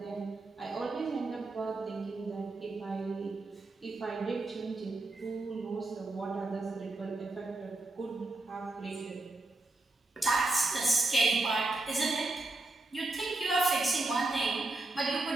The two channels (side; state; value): left; quieter; 3.1 dB